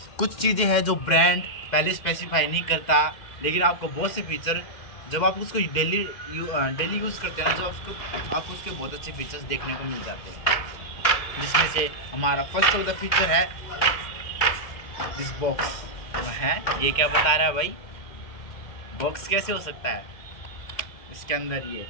कुछ चीज़ें हैं जो ब्रांड पहले स्पेसिफाई नहीं करता, लेकिन आपको बहुत से फीचर जब आप उसको डेली यूज़ करते हैं ना, जब आपको उसके बहुत अच्छे फीचर्स देखने को मिल जाते हैं। जिसमें से हमारा फर्स्ट ऑफ द फीचर है दिस बॉक्स। है ये क्या बता रहा है भाई, बॉक्स कैसे हो सकता है? इसके अंदर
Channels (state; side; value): late; right; 2.1 ms